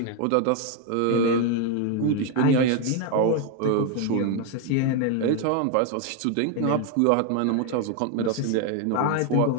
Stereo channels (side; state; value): both; different; correlation 0.01